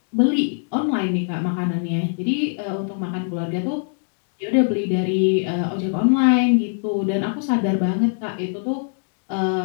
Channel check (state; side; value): silent; right; digital silence